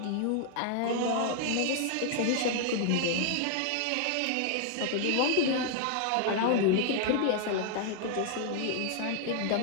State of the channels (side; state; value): both; different; correlation 0.00